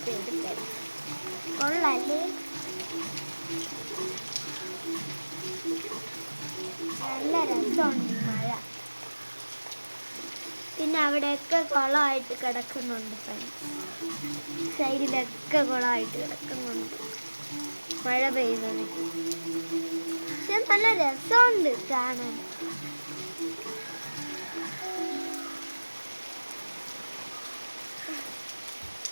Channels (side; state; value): both; inverted; correlation -1.00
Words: പെയ്തിട്ട് കൊള്ളല്ലേ. നല്ല രസമുണ്ട് മഴ. പിന്നെ അവിടെയൊക്കെ കുളമായിട്ട് കിടക്കുന്നുണ്ട് ഫ്രണ്ട്സ്. സൈഡിലൊക്കെ കുളമായിട്ട് കിടക്കുന്നുണ്ട് മഴ പെയ്യുന്നത്. പക്ഷെ നല്ല രസമുണ്ട് കാണാൻ.